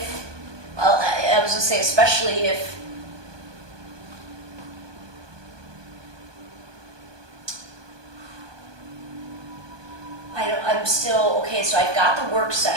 well, I was going to say especially if, I'm still, okay, so I've got the work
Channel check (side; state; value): left; late; 1.2 ms